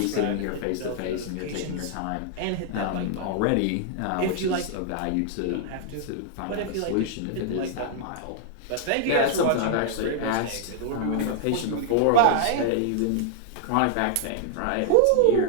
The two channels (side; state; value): both; different; correlation -0.01